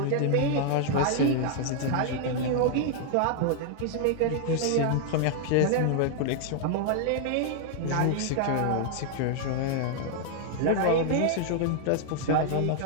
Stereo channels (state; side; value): different; both; correlation 0.00